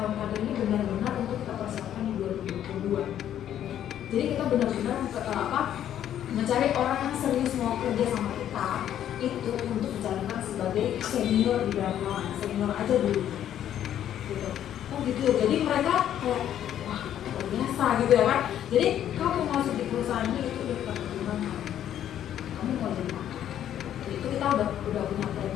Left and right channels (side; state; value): right; quieter; 10.7 dB